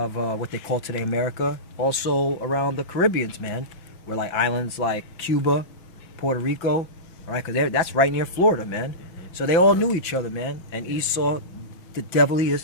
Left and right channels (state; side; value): late; right; 5.9 ms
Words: what they call today America, also around the Caribbeans, man, where like islands like Cuba, Puerto Rico, all right, because that's right near Florida, man. So they all knew each other, man. And Esau, the devil he is,